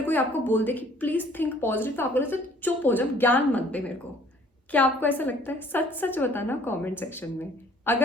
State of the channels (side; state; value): both; normal; correlation 0.56